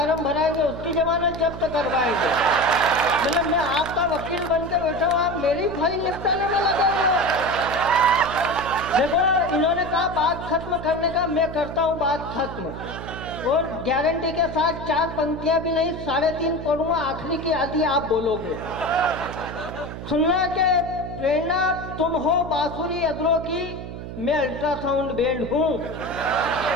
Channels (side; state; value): right; noise; hum, 9 dB below the sound